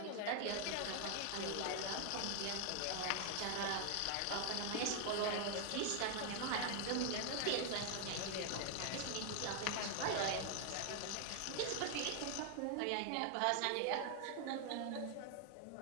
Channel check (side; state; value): both; different; correlation 0.00